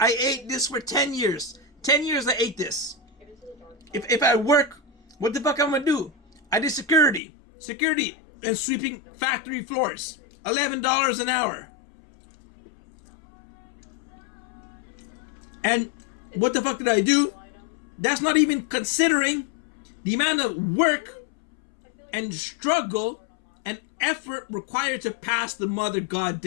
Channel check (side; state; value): right; drops out; at 7.2 s